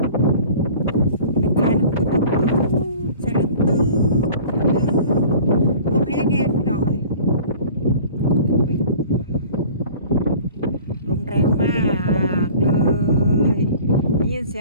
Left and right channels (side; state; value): both; inverted; correlation -0.45